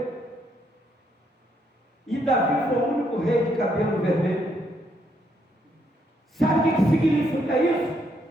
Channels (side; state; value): both; normal; correlation 0.74